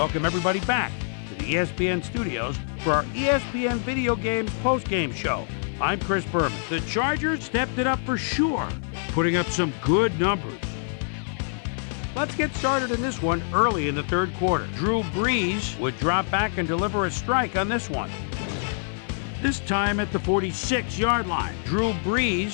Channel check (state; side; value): silent; right; digital silence